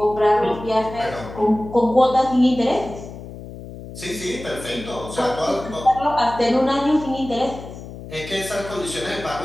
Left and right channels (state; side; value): noise; left; hum, 13 dB below the sound